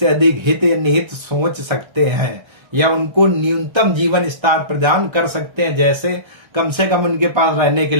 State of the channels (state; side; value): late; left; 1.3 ms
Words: अधिक हित या निहित सोच सकते हैं या उनको न्यूनतम जीवन स्तर प्रदान कर सकते हैं, जैसे कम से कम उनके पास रहने के